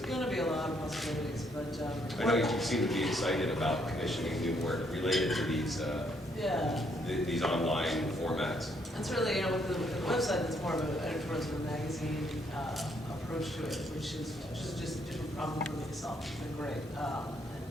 going to be a lot of possibilities, but I know you seem to be excited about commissioning new work related to these online formats. And certainly, with the website, it's more of an editorial sort of magazine approach to it, which is just a different problem for me to solve. It's been great, and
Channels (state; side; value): normal; both; correlation 0.71